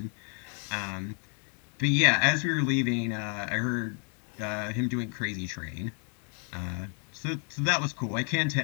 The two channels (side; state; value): right; quieter; 39.5 dB